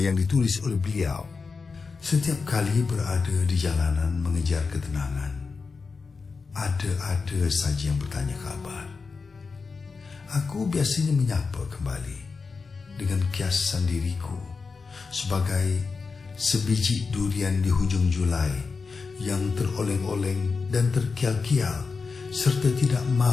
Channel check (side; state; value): right; quieter; 4.7 dB